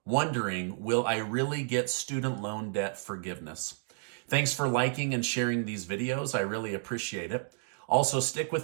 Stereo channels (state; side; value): silent; left; digital silence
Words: wondering, will I really get student loan debt forgiveness? Thanks for liking and sharing these videos. I really appreciate it. Also, stick